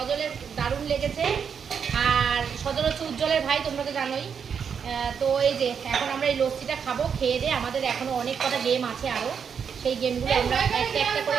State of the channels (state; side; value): quieter; left; 6.9 dB